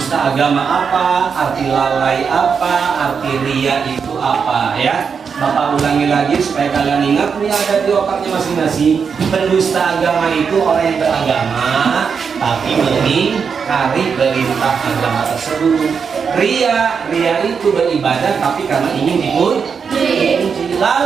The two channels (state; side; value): quieter; left; 6.1 dB